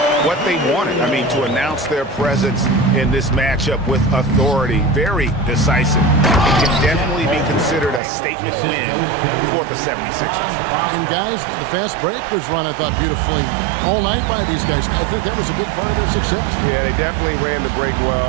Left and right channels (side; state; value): left; drops out; at 8.0 s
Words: what they wanted. I mean, to announce their presence in this matchup with authority, very decisive. It can definitely be considered a statement win for the 76ers. And guys, the fast break was run, I thought, beautifully all night by these guys. I think that was a big part of their success. Yeah, they definitely ran the break well.